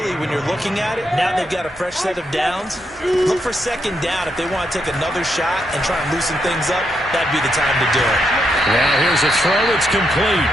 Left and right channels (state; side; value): normal; both; correlation 0.80